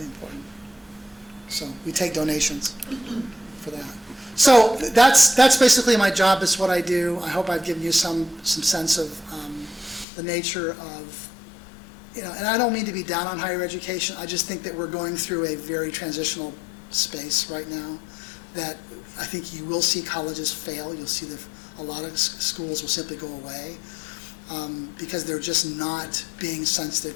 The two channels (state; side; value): drops out; right; at 10.1 s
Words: important. So we take donations for that. So that's basically my job. It's what I do. I hope I've given you some sense of the nature of, and I don't mean to be down on higher education. I just think that we're going through a very transitional space right now, that I think you will see colleges fail. You'll see a lot of schools will simply go away because they're just not being sensitive